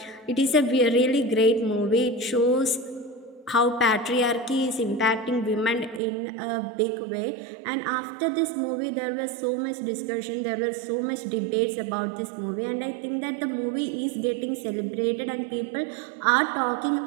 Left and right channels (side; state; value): left; drops out; at 6.0 s